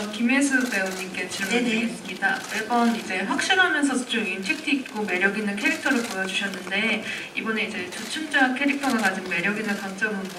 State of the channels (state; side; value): identical; both; correlation 1.00